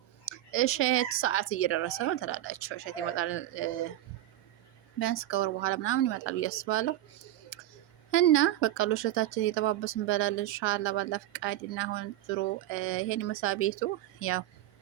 እሸት ሰዓት እየደረሰ ነው ትላላችሁ። እሸት ይመጣል ቢያንስ ከወር በኋላ ምናምን ይመጣል ብዬ አስባለሁ። እና በቃ እሸታችን እየጠባበስን እንበላለን ኢንሻአላህ ባላ ፍቃድ። እና አሁን ዙሮ ይሄን መሳ ቤቱ ያው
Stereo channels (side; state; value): left; quieter; 13.9 dB